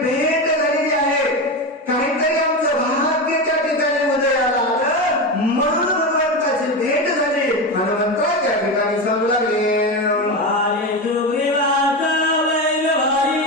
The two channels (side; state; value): both; normal; correlation 0.18